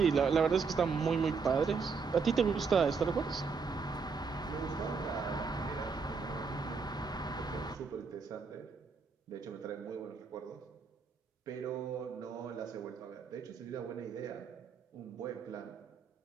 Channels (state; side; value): quieter; left; 5.2 dB